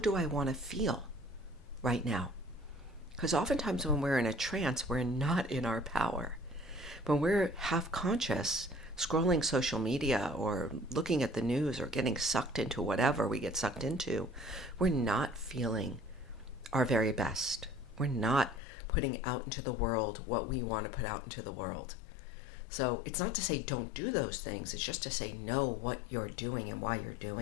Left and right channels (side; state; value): right; drops out; at 18.6 s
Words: I want to feel right now? Because oftentimes when we're in a trance, we're not in our power. When we're half conscious, scrolling social media or looking at the news or getting sucked into whatever we get sucked into, we're not feeling our very best. We're not putting out into the world what we want to put out into the world. So it's not to say don't do those things. It's just to say know what you're doing and why you're